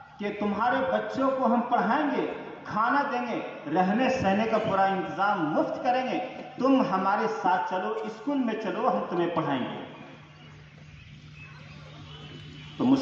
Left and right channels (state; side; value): identical; both; correlation 1.00